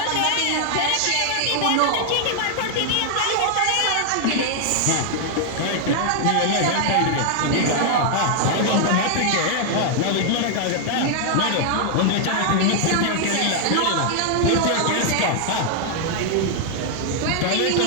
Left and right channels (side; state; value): both; different; correlation 0.00